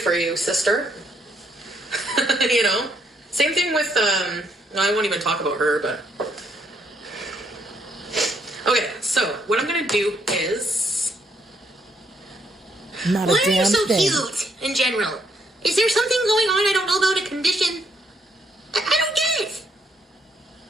For you, sister. Same thing with no, I won't even talk about her, but okay, so what I'm gonna do is not a Why damn are you so thing. cute in general? Is there something going on I don't know about, a condition? I don't get it.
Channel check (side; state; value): both; normal; correlation 0.72